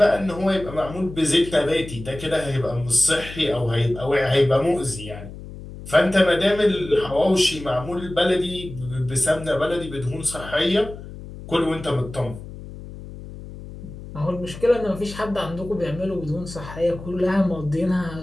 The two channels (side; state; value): left; noise; hum, 13 dB below the sound